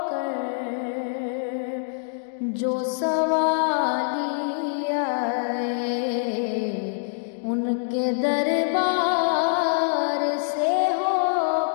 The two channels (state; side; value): silent; right; digital silence